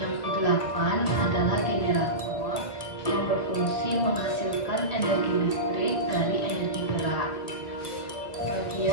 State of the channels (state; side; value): late; right; 1.5 ms